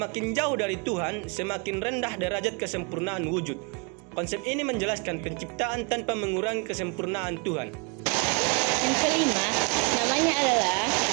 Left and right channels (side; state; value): left; quieter; 32.6 dB